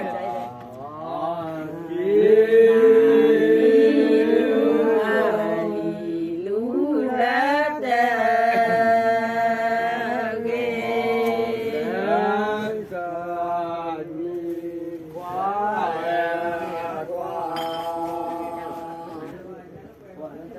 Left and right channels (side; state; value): both; identical; correlation 1.00